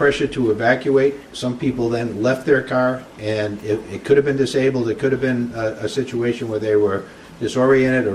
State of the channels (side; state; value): both; identical; correlation 1.00